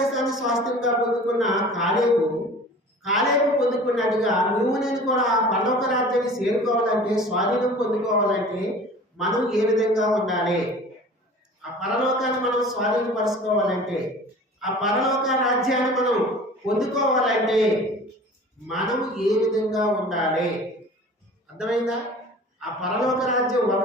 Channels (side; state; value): both; normal; correlation 0.43